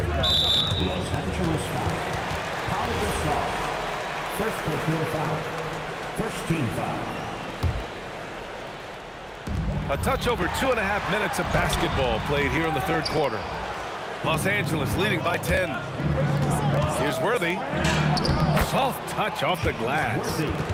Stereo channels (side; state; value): both; identical; correlation 1.00